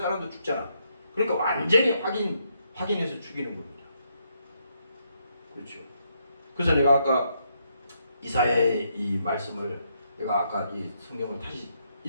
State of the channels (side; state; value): both; inverted; correlation -0.76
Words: 사람도 죽잖아. 그러니까 완전히 확인해서 죽이는 겁니다. 그렇죠. 그래서 내가 아까 이사야의 이 말씀을 내가 아까 이 성경을 다시